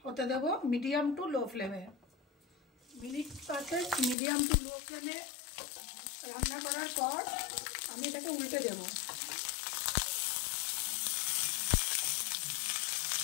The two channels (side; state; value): right; drops out; at 4.2 s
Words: হতে দেবো, মিডিয়াম টু লো ফ্লেমে। মিনিট 5 মিডিয়াম টু লো ফ্লেমে রান্না করার পর আমি এটাকে উল্টে দেবো।